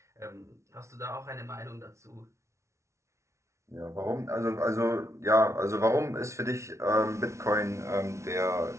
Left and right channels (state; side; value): late; left; 0.14 ms